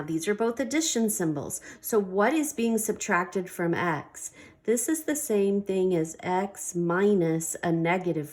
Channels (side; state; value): both; identical; correlation 1.00